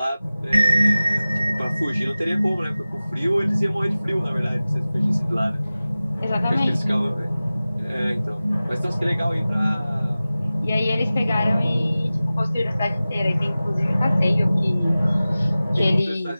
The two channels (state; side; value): inverted; both; correlation -0.97